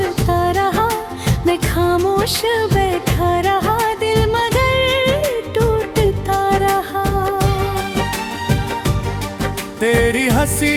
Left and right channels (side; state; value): both; identical; correlation 1.00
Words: रहा, मैं खामोश बैठा रहा, दिल मगर टूटता रहा। तेरी हंसी